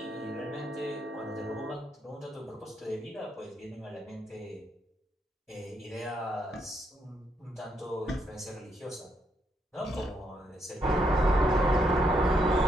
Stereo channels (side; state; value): both; normal; correlation 0.76